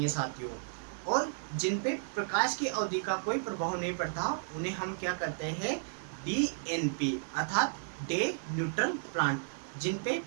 साथियों। और जिन पे प्रकाश की अवधि का कोई प्रभाव नहीं पड़ता उन्हें हम क्या कहते हैं, DNP अर्थात डे न्यूट्रल प्लांट। जिन पे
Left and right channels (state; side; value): silent; left; 56 dB below the other